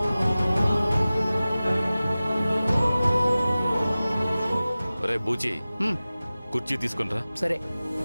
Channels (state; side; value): inverted; both; correlation -0.97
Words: రే బూచి, కుర్చీ తీసుకునిరా. సరే.